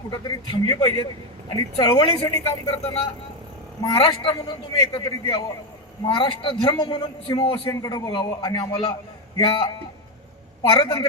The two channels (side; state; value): both; normal; correlation 0.08